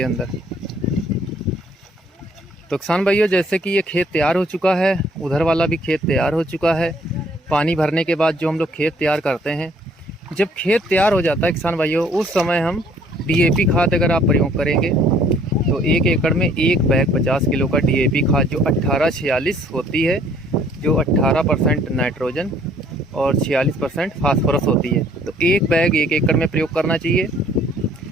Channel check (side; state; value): both; normal; correlation 0.60